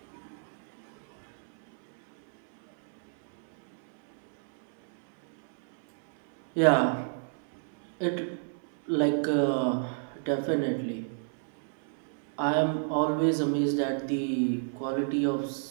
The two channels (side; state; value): left; silent; 58 dB below the other